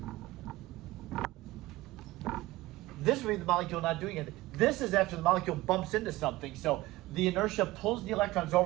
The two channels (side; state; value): left; quieter; 18.5 dB